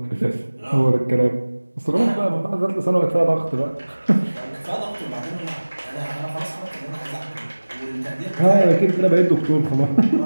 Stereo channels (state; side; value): inverted; both; correlation -1.00